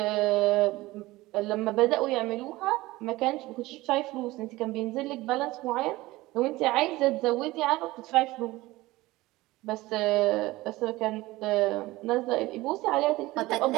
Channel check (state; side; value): quieter; left; 19.1 dB